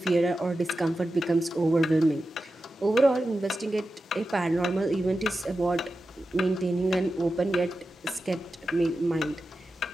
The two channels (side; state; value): both; normal; correlation 0.92